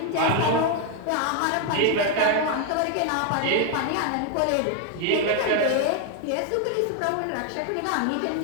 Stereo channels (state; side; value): different; both; correlation 0.00